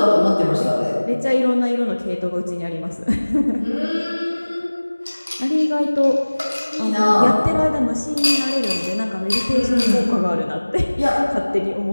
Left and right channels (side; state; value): both; inverted; correlation -1.00